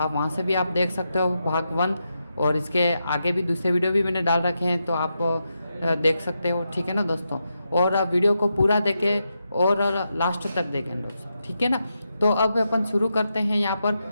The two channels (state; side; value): inverted; both; correlation -0.85